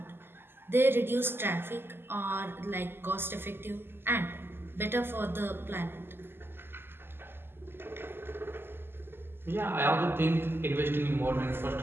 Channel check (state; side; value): late; left; 0.11 ms